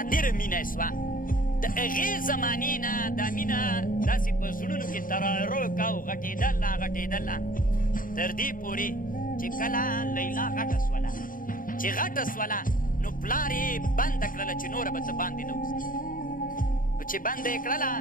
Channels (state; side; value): late; right; 0.40 ms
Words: مینه یې سوه د هغې زمانې نه دا مینه داسې په زړونو کې ترارو کا او غټېدله تر دې پورې چې کله لیلا غټه سوله چې غټه سوله نو پلار یې بنده کړله چې نوره به ته باندې نه وځي نو چې بنده یې کړله